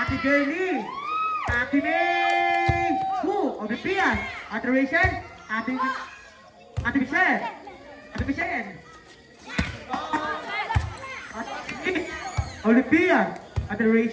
Jelly, Ate May, Ate Pia, Ate Rachel, Ate Michelle, Ate Michelle, Ate Olivia, Ate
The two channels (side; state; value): both; identical; correlation 1.00